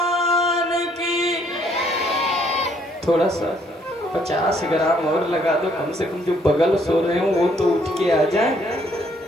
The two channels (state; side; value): normal; both; correlation 0.66